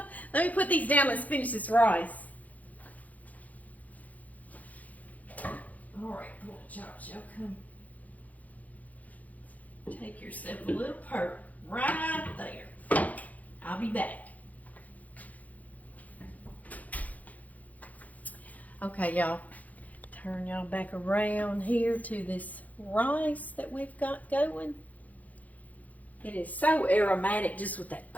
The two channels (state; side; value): late; right; 0.077 ms